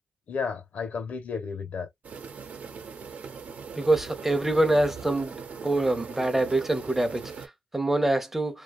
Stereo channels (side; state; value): both; normal; correlation 0.91